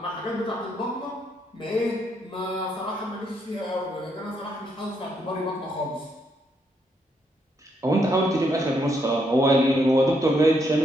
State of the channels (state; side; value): normal; both; correlation 0.75